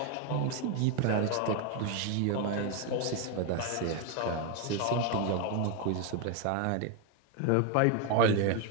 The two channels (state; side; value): different; both; correlation 0.01